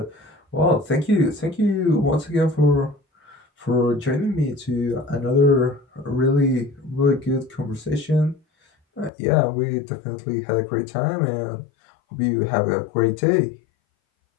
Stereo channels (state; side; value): drops out; right; at 9.1 s